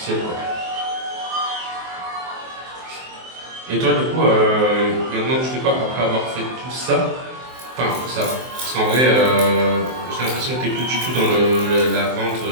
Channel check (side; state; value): left; late; 23 ms